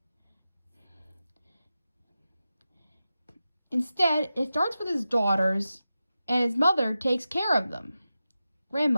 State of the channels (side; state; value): both; inverted; correlation -0.92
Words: Instead, it starts with his daughters, and his mother takes care of them,